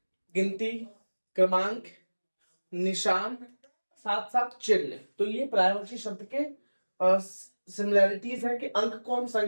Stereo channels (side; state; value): both; inverted; correlation -1.00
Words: गिनती, क्रमांक, निशान, साथ साथ चिन्ह। तो ये पर्यायवाची शब्द के सिमिलैरिटीज है कि अंक को हम